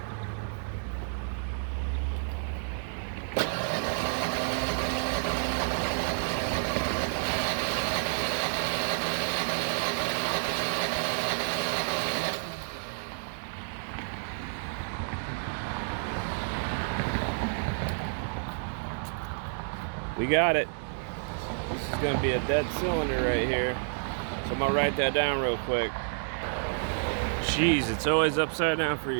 We got it. This is going to be a dead cylinder right here. So I'm going to write that down real quick. Jeez, it's always upside down for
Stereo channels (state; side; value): silent; left; digital silence